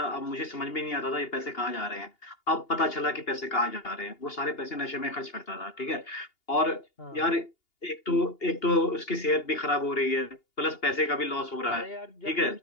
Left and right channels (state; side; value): late; right; 2.8 ms